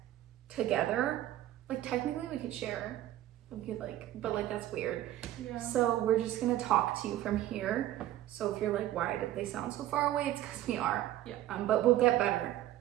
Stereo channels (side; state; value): left; quieter; 13.8 dB